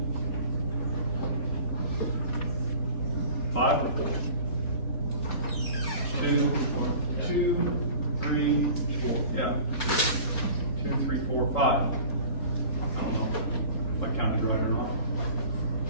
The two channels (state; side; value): late; right; 4.1 ms